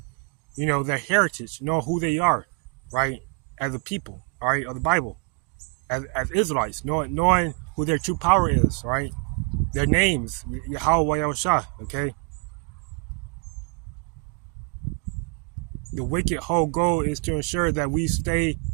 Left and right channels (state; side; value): quieter; left; 35.4 dB